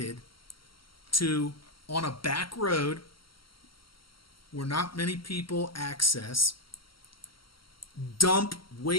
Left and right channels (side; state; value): right; late; 0.74 ms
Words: to, on a back road where not many people access, dump